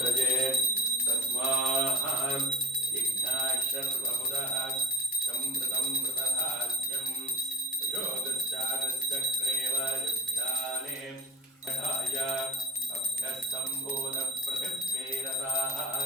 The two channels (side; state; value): both; normal; correlation 0.47